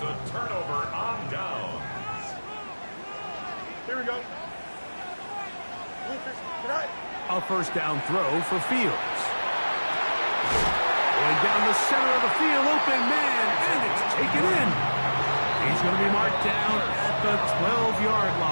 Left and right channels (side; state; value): both; inverted; correlation -1.00